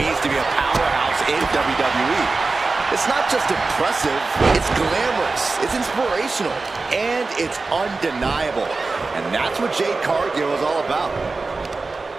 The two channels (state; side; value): quieter; left; 3.8 dB